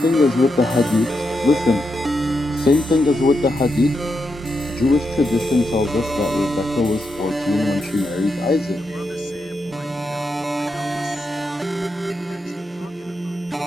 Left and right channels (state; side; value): normal; both; correlation 0.84